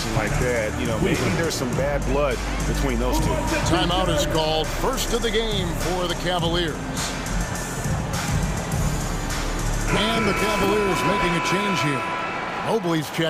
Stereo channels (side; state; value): both; identical; correlation 1.00